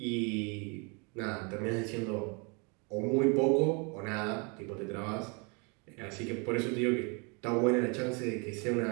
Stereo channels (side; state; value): left; quieter; 33.0 dB